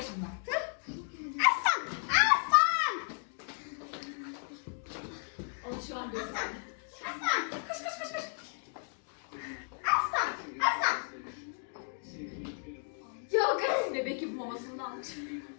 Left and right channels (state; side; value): silent; right; 55 dB below the other